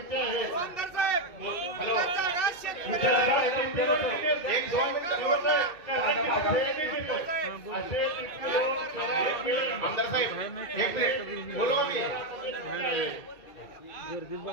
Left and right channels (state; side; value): late; right; 2.3 ms